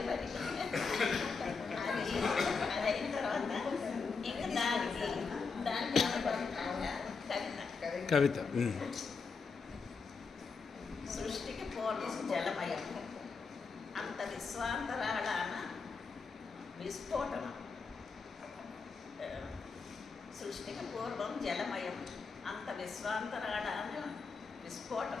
మరి అది అయిన తర్వాత ఇంకా దానికి కవిత సృష్టికి పూర్వం జలమయం, అంత విశ్వాంతరాళాన విస్ఫోటనం. సృష్టికి పూర్వం జలమయం, అంత విశ్వాంతరాళాన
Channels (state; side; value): quieter; right; 4.9 dB